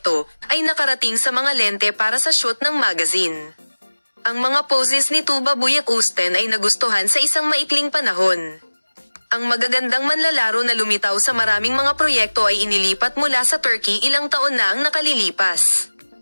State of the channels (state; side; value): inverted; both; correlation -1.00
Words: ay nakarating sa mga lente para sa shoot ng magazine. Ang mga poses ni Tuba Buyak Usten ay nagustuhan sa isang maikling panahon. Ang magagandang manlalaro na lumitaw sa maraming mga proyekto ay inilipat mula sa Turkey ilang taon na ang nakalilipas.